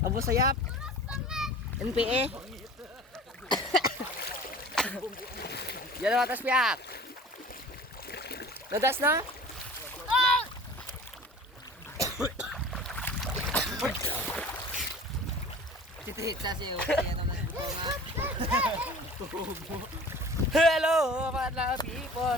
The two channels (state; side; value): normal; both; correlation 0.42